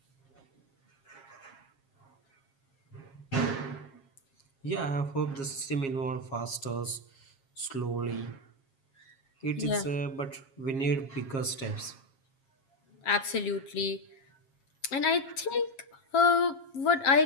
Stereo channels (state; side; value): late; right; 7.4 ms